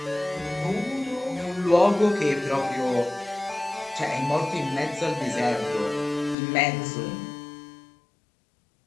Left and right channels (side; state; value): right; drops out; at 6.4 s